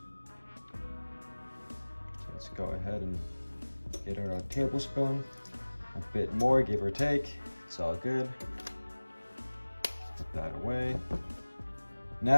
So let's go ahead and get our tablespoon. A bit more, give or take. It's all good. Put that away.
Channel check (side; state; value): both; inverted; correlation -1.00